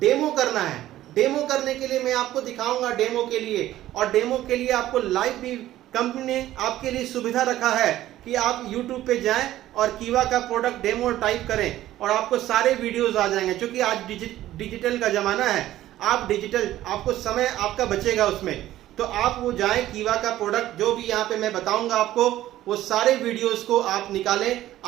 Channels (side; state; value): left; quieter; 14.1 dB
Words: डेमो करना है। डेमो करने के लिए मैं आपको दिखाऊंगा डेमो के लिए, और डेमो के लिए आपको लाइव भी कंपनी ने आपके लिए सुविधा रखा है कि आप YouTube पे जाएं और कीवा का प्रोडक्ट डेमो टाइप करें और आपको सारे वीडियोस आ जाएंगे। क्योंकि आज डिजिटल का जमाना है, आप डिजिटल, आपको समय आपका बचेगा उसमें, तो आप वो जाएं, कीवा का प्रोडक्ट जो भी यहाँ पे मैं बताऊंगा आपको, वो सारे वीडियोस को आप निकालें।